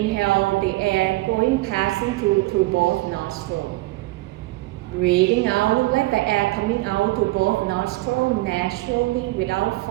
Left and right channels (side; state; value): left; quieter; 20.2 dB